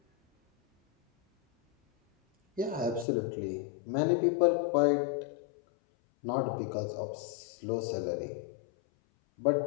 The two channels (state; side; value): drops out; right; at 3.1 s